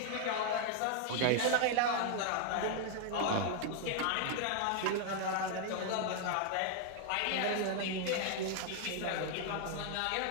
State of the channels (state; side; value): different; both; correlation 0.00